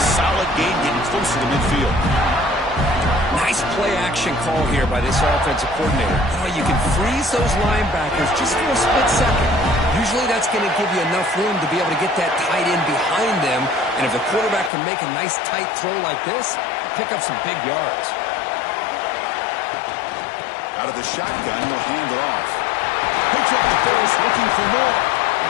solid gain, getting closer to midfield. Nice play-action call here by this offensive coordinator. You can freeze those linebackers just for a split second. Usually that's going to give you enough room to be able to get that tight end behind them. And if the quarterback can make a nice tight throw like this, pick up some big yards. Out of the shotgun, he'll hand it off. Picks up the pass, looking for more.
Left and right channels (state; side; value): drops out; right; at 14.7 s